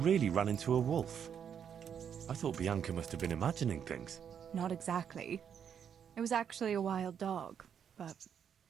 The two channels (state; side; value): quieter; left; 8.1 dB